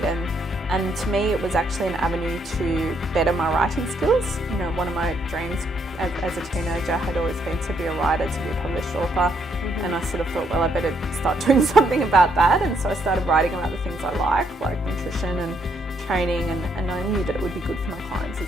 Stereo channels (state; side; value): normal; both; correlation 0.73